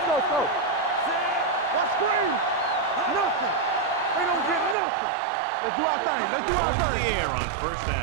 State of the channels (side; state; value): left; drops out; at 4.8 s